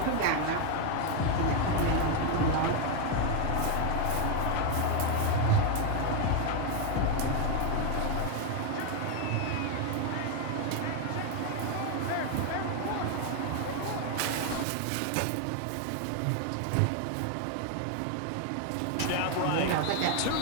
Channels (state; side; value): different; both; correlation 0.01